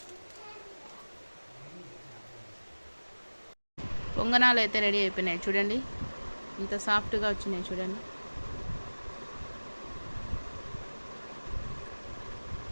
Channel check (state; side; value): inverted; both; correlation -1.00